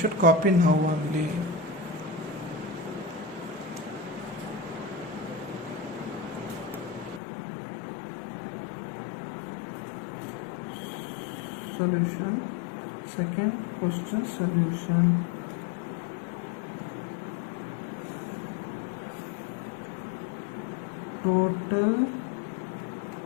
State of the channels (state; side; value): drops out; right; at 7.2 s